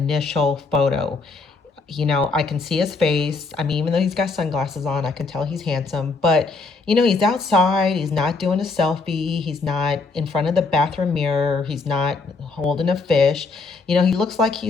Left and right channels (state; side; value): quieter; right; 4.0 dB